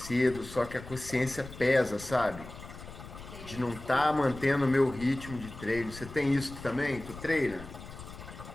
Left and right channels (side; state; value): left; noise; rumble, 14 dB below the sound